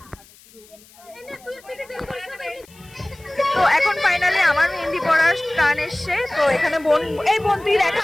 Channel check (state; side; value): noise; left; hiss, 26 dB below the sound